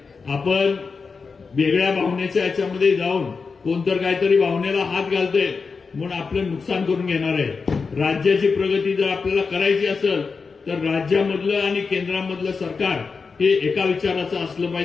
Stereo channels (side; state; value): right; quieter; 4.9 dB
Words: आपण वेगळ्या भावनेच्या याच्यामध्ये जाऊन कोणतर काहीतरी भावनेला हात घालतंय म्हणून आपलं नुकसान करून घेणार आहे. राज्याची प्रगती जर आपल्याला करायची असेल तर राज्यामधलं आणि केंद्रामधलं सरकार हे एका विचाराचं असलं